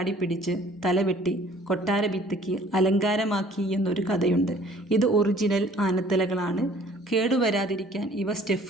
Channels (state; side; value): normal; both; correlation 0.54